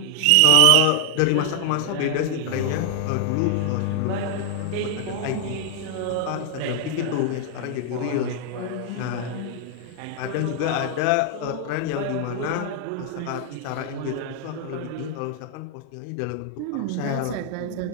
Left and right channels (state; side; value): different; both; correlation 0.00